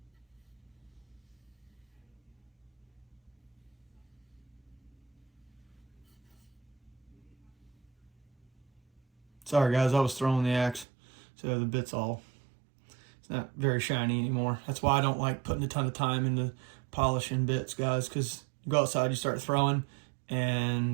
Sorry guys, I was throwing the axe, so the bit's it's not very shiny anymore. That's why I don't like putting a ton of time into polishing bits, guys, because you go outside, you start throwing,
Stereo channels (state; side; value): drops out; left; at 10.9 s